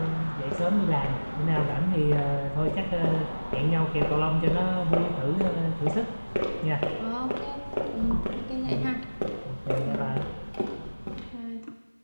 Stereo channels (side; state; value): both; inverted; correlation -1.00